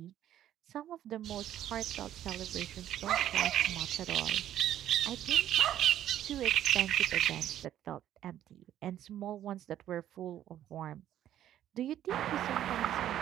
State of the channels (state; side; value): quieter; left; 11.6 dB